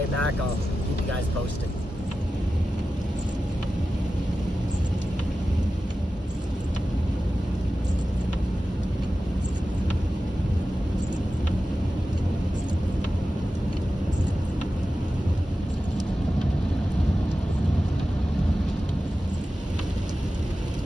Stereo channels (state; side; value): normal; both; correlation 0.94